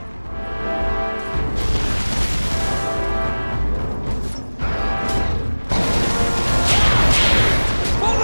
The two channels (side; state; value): both; inverted; correlation -1.00